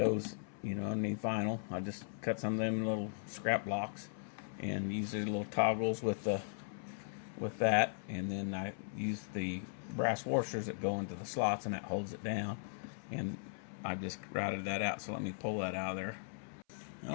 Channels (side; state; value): right; silent; 52 dB below the other